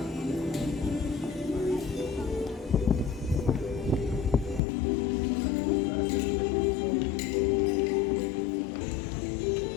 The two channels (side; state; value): right; drops out; at 4.6 s